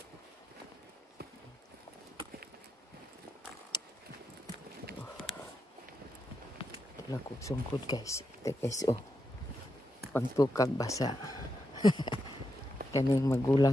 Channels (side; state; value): both; normal; correlation 0.85